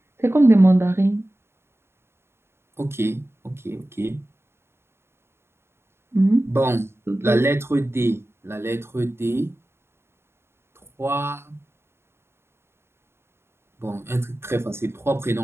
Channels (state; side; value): late; left; 0.12 ms